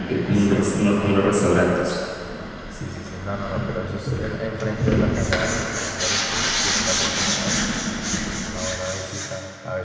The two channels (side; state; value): both; identical; correlation 1.00